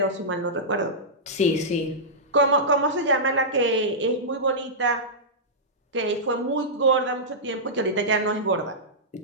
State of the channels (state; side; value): normal; both; correlation -0.13